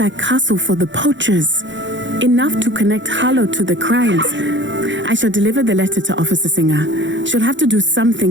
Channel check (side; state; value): left; late; 0.54 ms